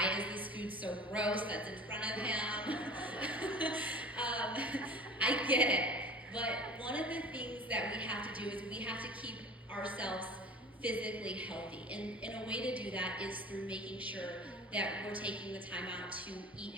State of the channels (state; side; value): normal; both; correlation 0.40